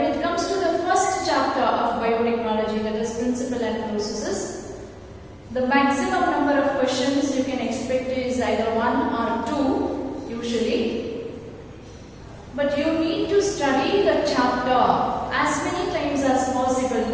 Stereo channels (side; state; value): both; identical; correlation 1.00